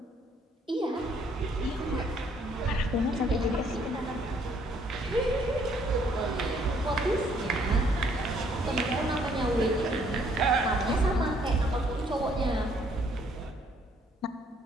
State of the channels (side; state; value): both; normal; correlation 0.66